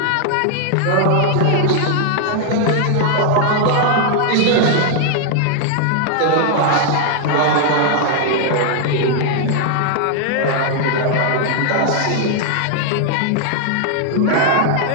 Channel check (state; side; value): different; both; correlation 0.00